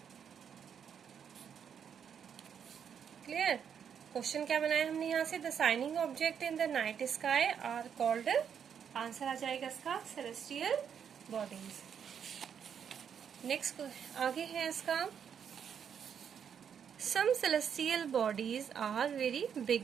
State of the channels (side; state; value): left; quieter; 7.8 dB